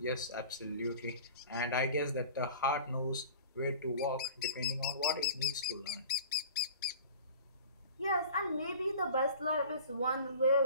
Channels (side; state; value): both; inverted; correlation -0.42